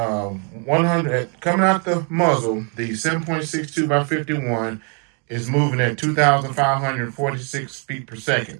coming out the muzzle, the 7.62 by 51 is moving at 2,546 feet per second.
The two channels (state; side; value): quieter; left; 38.9 dB